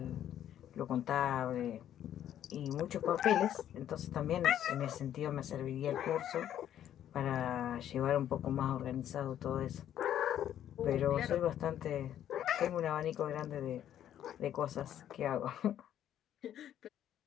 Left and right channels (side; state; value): right; quieter; 10.8 dB